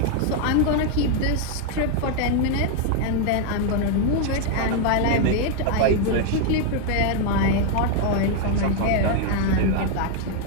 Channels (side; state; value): both; different; correlation 0.00